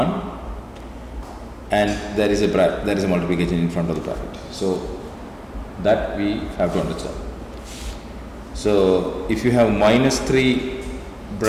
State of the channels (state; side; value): identical; both; correlation 1.00